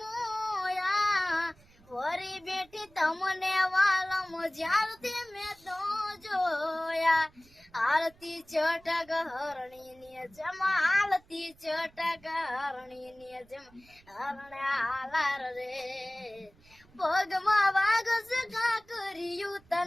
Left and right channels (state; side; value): noise; right; rumble, 28 dB below the sound